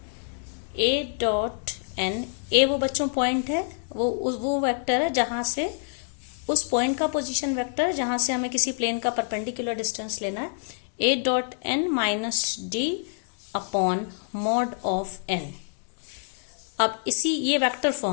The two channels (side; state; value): right; silent; 60 dB below the other